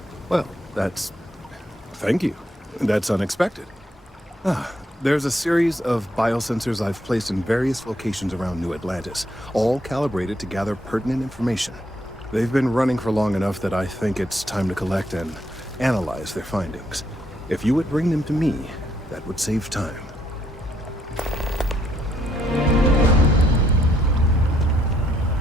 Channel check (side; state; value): both; normal; correlation 0.72